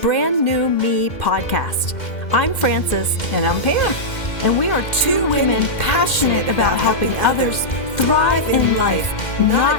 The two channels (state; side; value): late; right; 2.0 ms